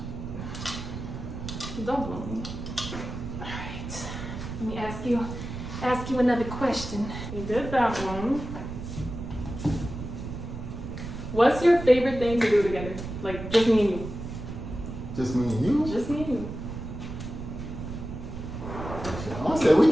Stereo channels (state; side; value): noise; right; rumble, 8 dB below the sound